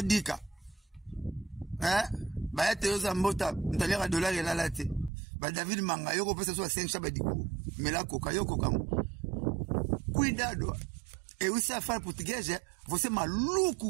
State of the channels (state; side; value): drops out; left; at 5.1 s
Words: Dika hein ba ete yo za mbota ndalera dollar la late ba David Manga yo ko pesa so 5 shaba diku mela koka yo koka cuidado e usa fala português você